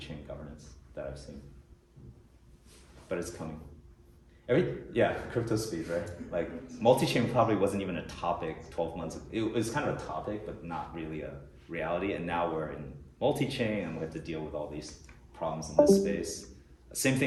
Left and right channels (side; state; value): both; identical; correlation 1.00